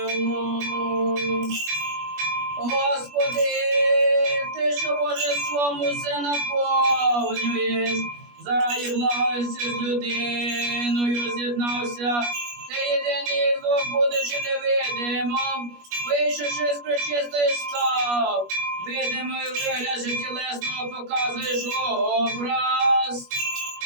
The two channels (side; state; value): left; late; 21 ms